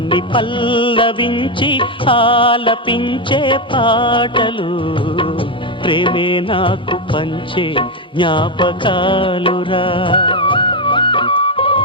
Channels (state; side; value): normal; both; correlation 0.07